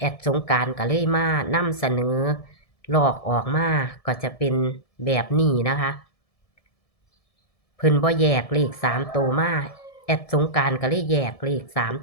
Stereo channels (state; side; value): late; right; 1.7 ms